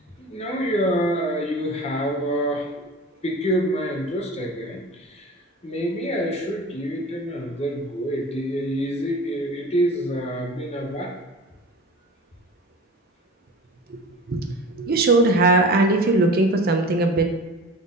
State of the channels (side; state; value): both; normal; correlation 0.37